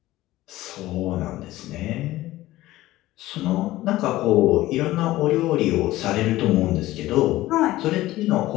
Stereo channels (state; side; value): quieter; right; 16.6 dB